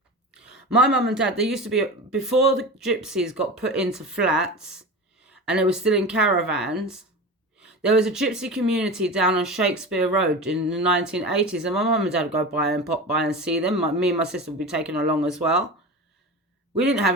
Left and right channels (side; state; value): both; normal; correlation 0.29